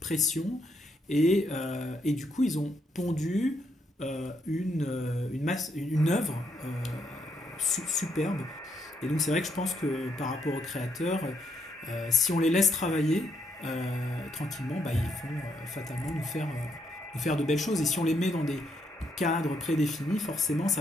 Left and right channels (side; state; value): both; normal; correlation 0.76